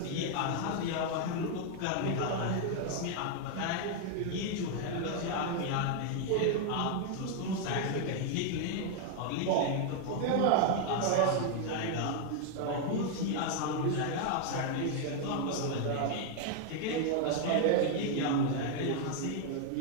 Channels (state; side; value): different; both; correlation 0.00